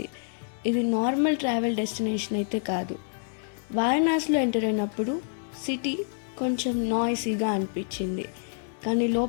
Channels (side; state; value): right; silent; digital silence